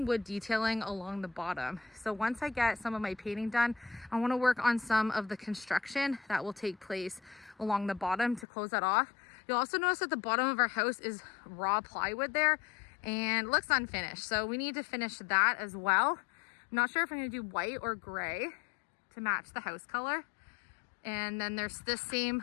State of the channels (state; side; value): drops out; right; at 8.5 s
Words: wood detailing along the bottom. So once I get some of my painting done, I want to work on some of the construction that will take place along the bottom to close that off. You'll also notice that the bottom of our house is raw plywood there and looks unfinished. So we need to finish that as well. I'm not sure if I'm going to do white or gray to match the house color. And then there's this same